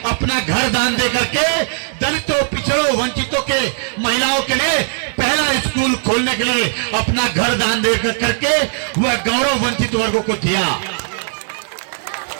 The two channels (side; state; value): left; silent; 60 dB below the other